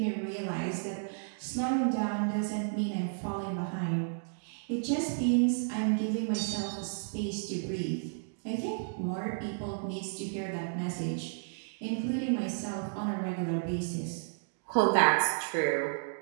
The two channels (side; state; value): left; silent; digital silence